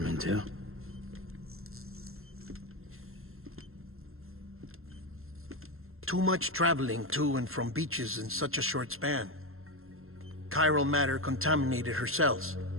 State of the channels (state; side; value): late; left; 0.61 ms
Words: too? Too much traveling to and from beaches in such a short span. Chiral matter contaminated her cells,